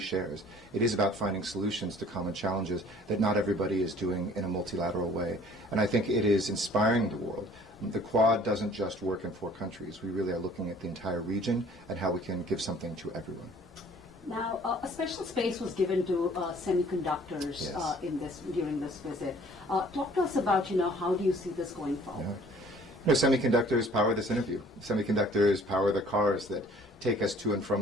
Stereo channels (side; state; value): both; normal; correlation 0.54